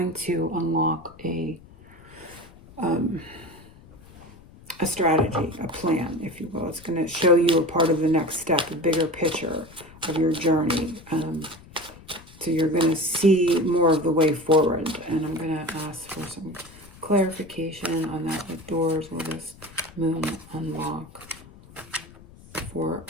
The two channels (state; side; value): noise; left; rumble, 22 dB below the sound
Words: to unlock a strategy, a plan, if you will. It's going to show you a part of the next step, a bigger picture of your journey. So you're going to see more of the way forward. And I'm going to ask for some clarification on that. What doors will this moon unlock for